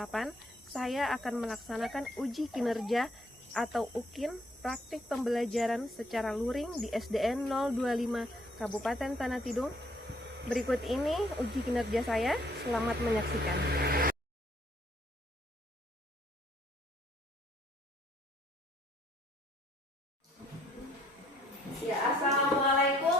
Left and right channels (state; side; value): normal; both; correlation 0.65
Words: saya akan melaksanakan uji kinerja atau UKIN praktik pembelajaran secara luring di SDN 025 Kabupaten Tanah Tidung. Berikut ini uji kinerja saya, selamat menyaksikan. Ya,